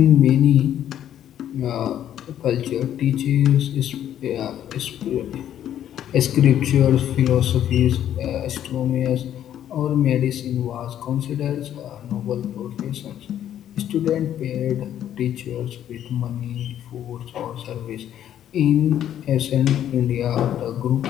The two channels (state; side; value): quieter; right; 10.8 dB